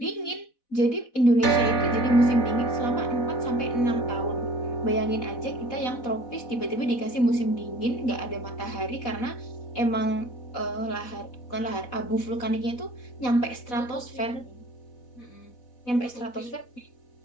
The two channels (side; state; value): right; late; 4.1 ms